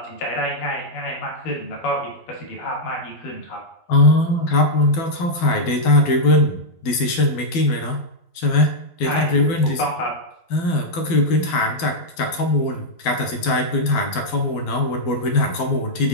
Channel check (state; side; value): late; right; 12 ms